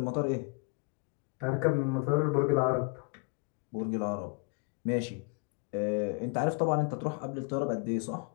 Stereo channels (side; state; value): right; quieter; 31.9 dB